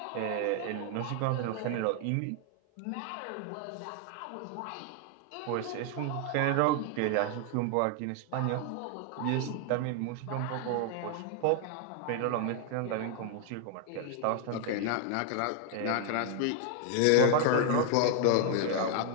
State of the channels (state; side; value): different; both; correlation 0.00